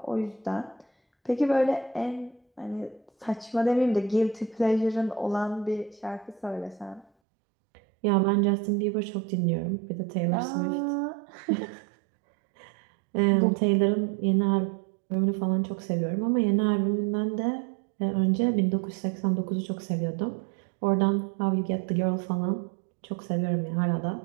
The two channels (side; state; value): left; drops out; at 7.1 s